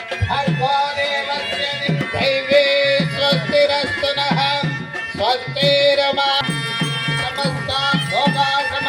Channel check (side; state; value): both; identical; correlation 1.00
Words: స్వస్తిరస్తునః స్వస్తిరమా సమస్త భోగా